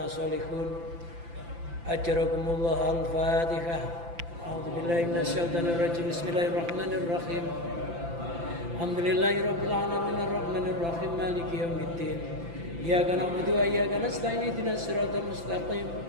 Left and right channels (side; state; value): left; late; 5.9 ms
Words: sholihun. Ajarakumullah. Al-Fatihah. A'udzubillahi minasyaitonir rajim. Bismillahirrahmanirrahim. Alhamdulillahirabbil alamin arrahmanir rahim maliki yaumiddin. Iyyaka na'budu wa iyyaka nasta'in ihdinas siratal mustaqim